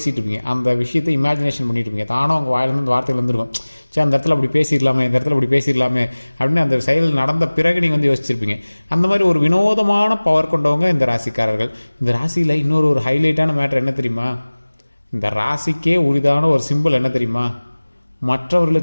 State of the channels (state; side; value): inverted; both; correlation -1.00